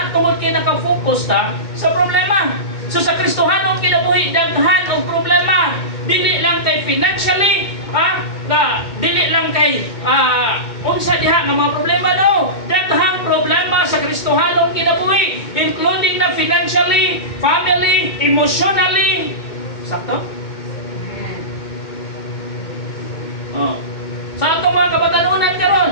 tungod kay naka-focus ta sa problema. So sa Kristohanong kinabuhi daghan og problema. Dili lang kay financially, dili lang kay unsa diha nga mga problema no. Daghang problema sa Kristohanong kinabuhi, including na financially, family, emotionally. Sakto? Sa atong mga kabatanunan karon.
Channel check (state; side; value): late; right; 2.2 ms